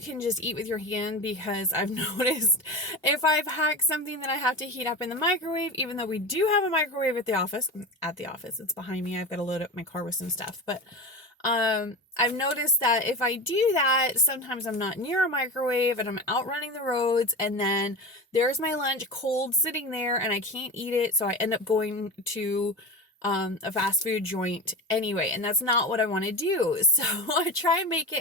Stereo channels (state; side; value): normal; both; correlation 0.25